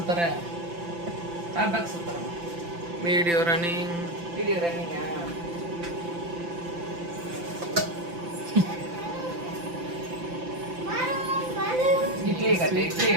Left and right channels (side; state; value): left; late; 5.9 ms